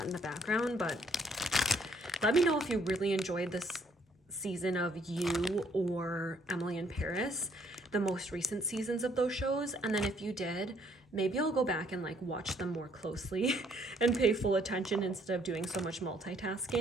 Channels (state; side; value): normal; both; correlation 0.65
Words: in the background. But let me know if you really enjoyed this season of You or Emily in Paris, the most recent seasons of those shows. And then if you did, maybe I'll go back and like watch them more closely and pay full attention instead of doing so much